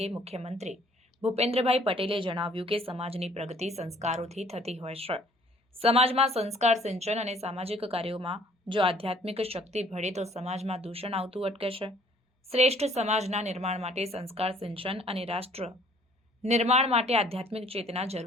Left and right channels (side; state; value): both; normal; correlation 0.57